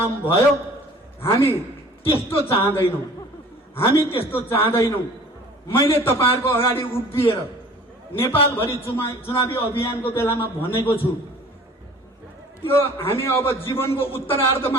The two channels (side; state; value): both; normal; correlation 0.48